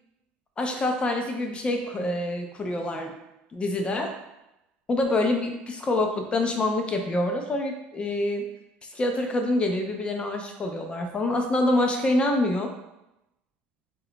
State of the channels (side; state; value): both; normal; correlation 0.67